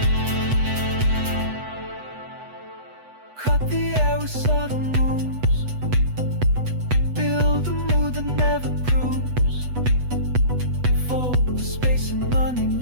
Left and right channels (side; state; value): left; late; 8.1 ms